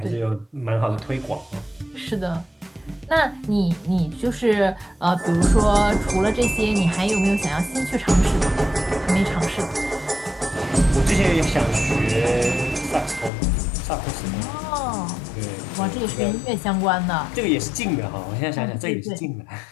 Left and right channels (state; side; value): drops out; right; at 13.3 s